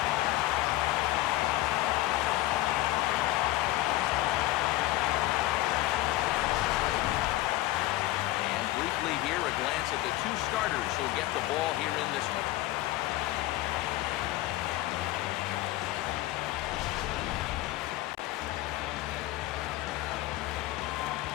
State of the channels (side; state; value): right; quieter; 16.7 dB